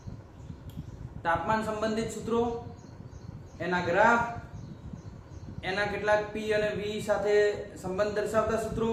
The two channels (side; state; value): both; identical; correlation 1.00